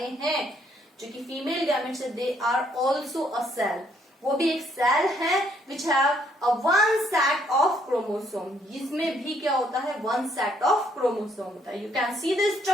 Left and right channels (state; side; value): normal; both; correlation 0.69